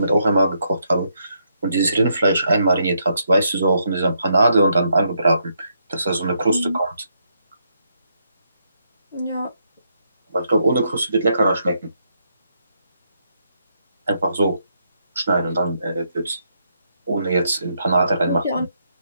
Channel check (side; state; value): both; inverted; correlation -0.77